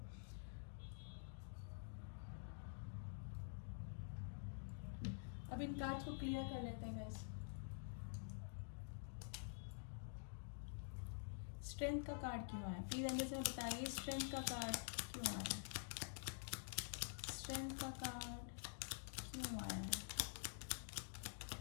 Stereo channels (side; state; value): right; silent; digital silence